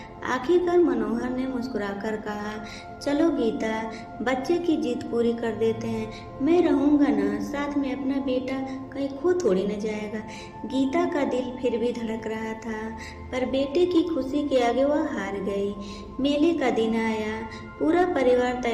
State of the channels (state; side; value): identical; both; correlation 1.00